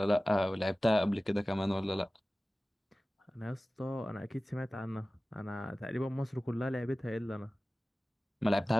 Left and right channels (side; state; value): both; normal; correlation 0.97